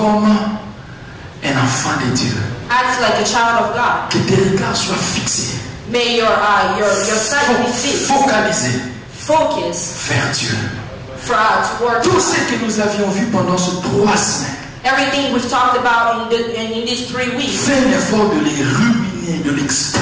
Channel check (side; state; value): both; identical; correlation 1.00